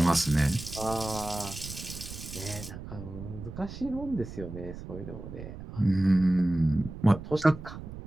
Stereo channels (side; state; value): right; noise; rumble, 11 dB below the sound